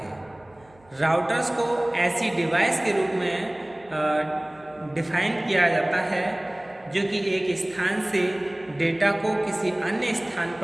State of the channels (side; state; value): right; noise; hum, 30 dB below the sound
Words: है। राउटर्स को ऐसी डिवाइस के रूप में डिफाइन किया जाता है जो कि एक स्थान से डेटा को किसी अन्य स्थान